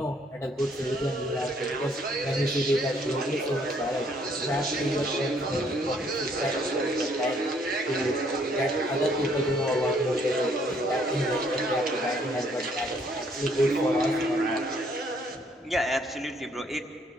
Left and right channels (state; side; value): normal; both; correlation 0.66